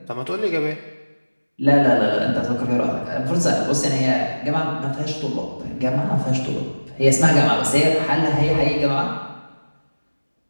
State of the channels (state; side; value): inverted; both; correlation -1.00